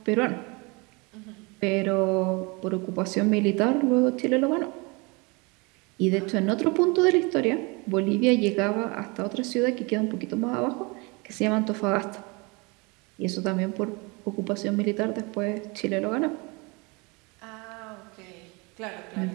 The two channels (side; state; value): left; quieter; 28.2 dB